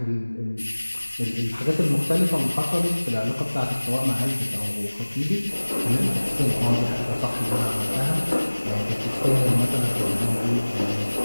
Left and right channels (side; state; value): both; inverted; correlation -1.00